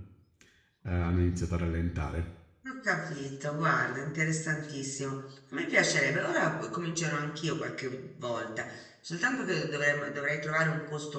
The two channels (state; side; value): identical; both; correlation 1.00